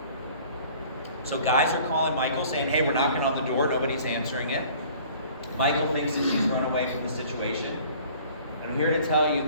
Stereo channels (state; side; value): inverted; both; correlation -0.51